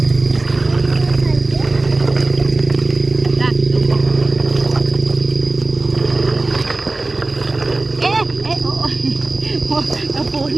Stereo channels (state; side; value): quieter; left; 3.1 dB